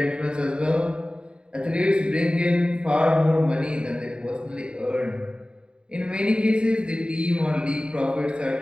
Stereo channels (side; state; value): left; late; 0.052 ms